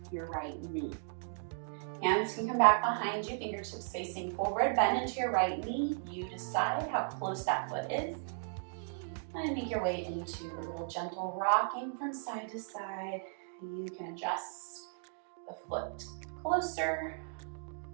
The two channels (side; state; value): left; silent; digital silence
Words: your right knee. Hands can come back behind you, fingertips facing forward. Bend into your right knee. You decide how close that foot is. And make your way into a little gentle rocking from side to side. You can adjust the foot closer